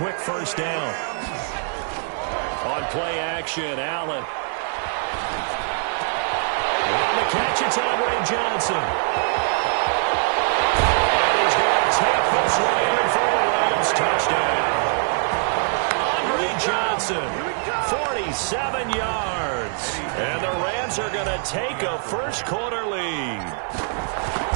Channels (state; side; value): silent; left; 63 dB below the other